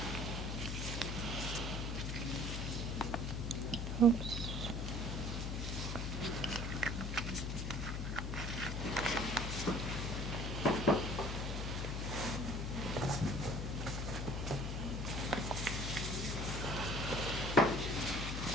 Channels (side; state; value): left; noise; hum, 2 dB below the sound